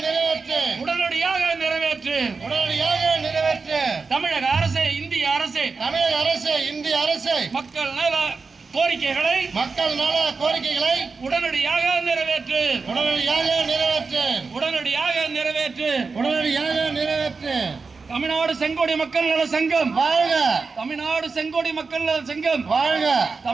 நிறைவேற்று உடனடியாக நிறைவேற்று உடனடியாக நிறைவேற்று. தமிழக அரசே, இந்திய அரசே, தமிழக அரசு, இந்திய அரசு மக்கள் நல கோரிக்கைகளை மக்கள் நல கோரிக்கைகளை உடனடியாக நிறைவேற்று உடனடியாக நிறைவேற்று உடனடியாக நிறைவேற்று உடனடியாக நிறைவேற்று. தமிழ்நாடு செங்கோடி மக்கள் நல சங்கம் வாழ்க, தமிழ்நாடு செங்கோடி மக்கள் நல சங்கம் வாழ்க,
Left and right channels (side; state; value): left; quieter; 4.5 dB